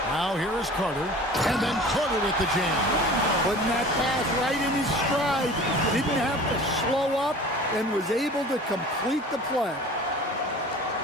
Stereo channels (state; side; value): normal; both; correlation 0.42